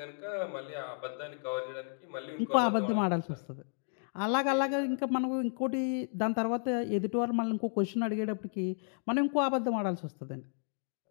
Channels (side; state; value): right; silent; digital silence